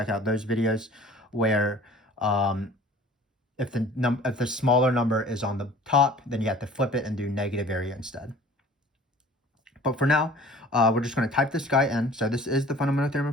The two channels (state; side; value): normal; both; correlation 0.48